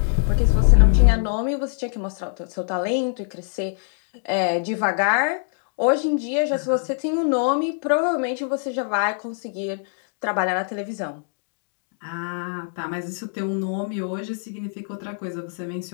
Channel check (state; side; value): silent; right; digital silence